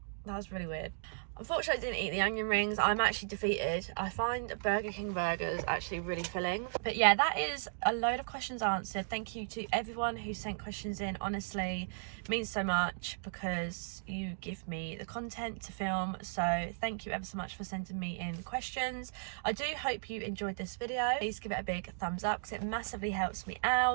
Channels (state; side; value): silent; left; digital silence